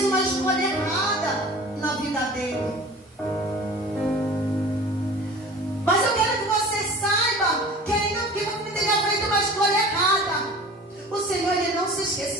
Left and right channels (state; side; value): normal; both; correlation 0.41